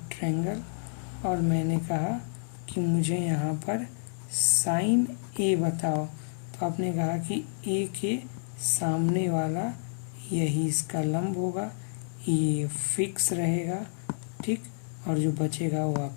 और मैंने कहा कि मुझे यहाँ पर साइन A बताओ, तो आपने कहा कि A के सामने वाला यही इसका लंब होगा, ये फिक्स रहेगा, ठीक, और जो बचेगा वो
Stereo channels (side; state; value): right; silent; digital silence